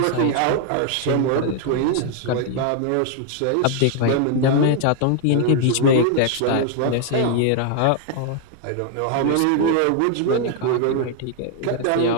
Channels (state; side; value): different; both; correlation 0.00